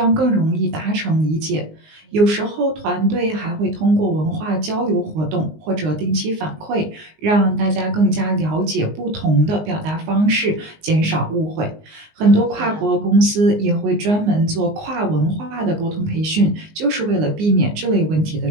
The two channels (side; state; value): left; late; 19 ms